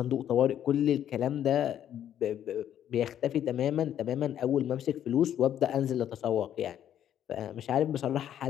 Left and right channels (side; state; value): right; quieter; 10.4 dB